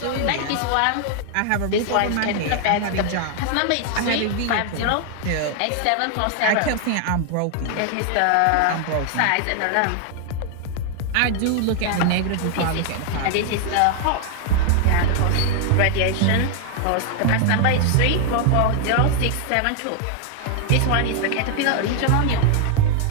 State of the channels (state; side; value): different; both; correlation 0.00